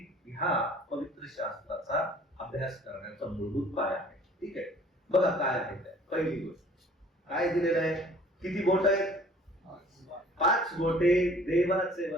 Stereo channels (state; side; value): normal; both; correlation 0.53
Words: ह्या पवित्र शास्त्राचा अभ्यास करण्याचा मूलभूत पाया आहे. ठीक आहे, बघा काय आहे ते. पहिली गोष्ट काय दिलेलं आहे, किती बोट आहेत? 5 बोटे देवाचे